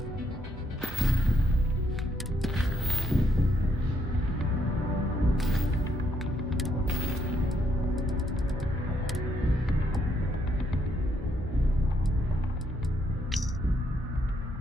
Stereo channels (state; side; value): normal; both; correlation 0.74